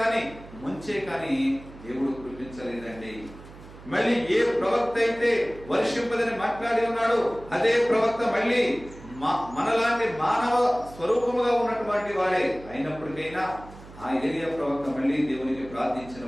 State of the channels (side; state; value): right; noise; hum, 18 dB below the sound